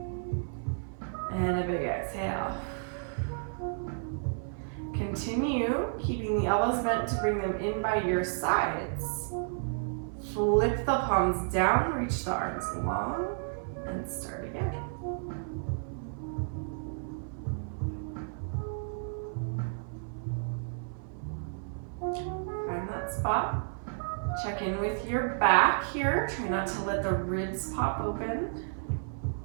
and a big exhale. Continue keeping the elbows bent to bring them in by your sides. Flip the palms down, reach the arms long, and start again. Find that spot. Check in with your back here. Try not to let the ribs pop open.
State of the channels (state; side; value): silent; left; 57 dB below the other